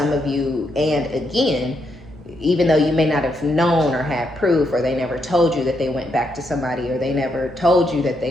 of you. And again, even though you may not have known or had proof, or they never told you that they went back to somebody, or they never told you that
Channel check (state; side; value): normal; both; correlation 0.79